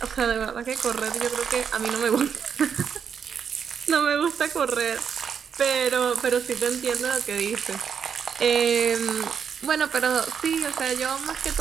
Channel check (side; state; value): left; quieter; 7.2 dB